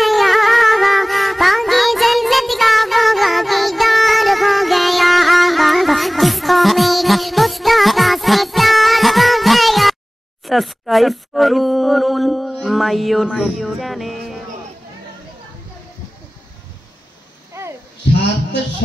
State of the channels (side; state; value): both; normal; correlation 0.98